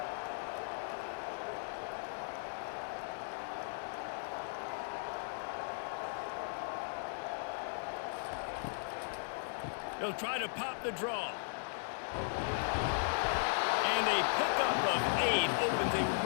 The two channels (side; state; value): right; silent; digital silence